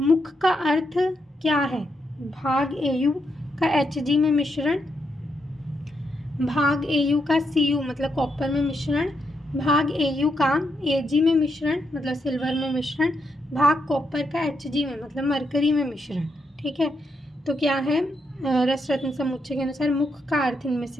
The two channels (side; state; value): both; normal; correlation 0.81